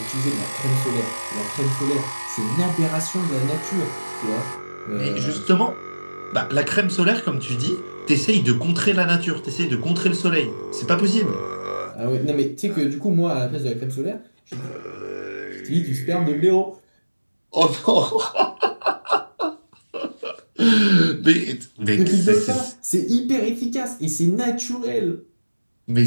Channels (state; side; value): inverted; both; correlation -1.00